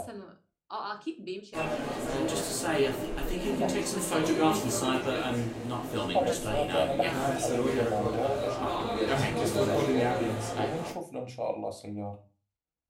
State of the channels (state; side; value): identical; both; correlation 1.00